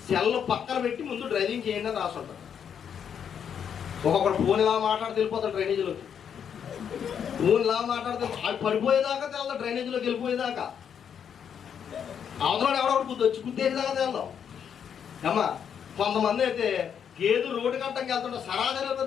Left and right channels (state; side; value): quieter; right; 8.0 dB